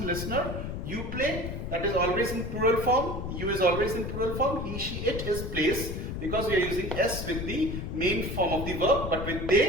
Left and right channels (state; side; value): noise; left; rumble, 5 dB below the sound